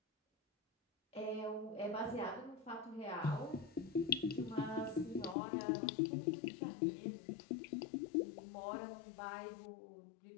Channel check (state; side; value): drops out; right; at 5.4 s